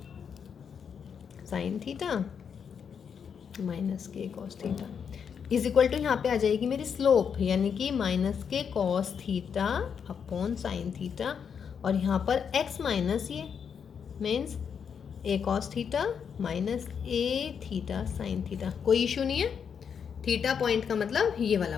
साइन थीटा माइनस के cos theta is equal to, यहाँ पे आ जाएगी मेरी स्लोप, यानी कि माइनस के cos theta upon sine theta, और यहाँ पर x माइनस ये means a cos theta minus a theta sine theta. कोई इशू नहीं है। थीटा पॉइंट का मतलब ये वाला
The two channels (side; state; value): right; quieter; 7.1 dB